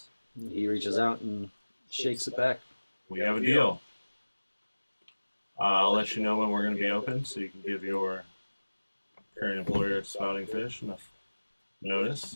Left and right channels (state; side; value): inverted; both; correlation -1.00